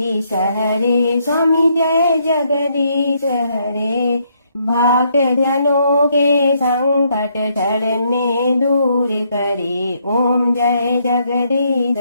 हरे, स्वामी जय जगदीश हरे, भक्त जनों के संकट क्षण में दूर करे। ओम जय जगदीश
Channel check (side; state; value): both; inverted; correlation -0.73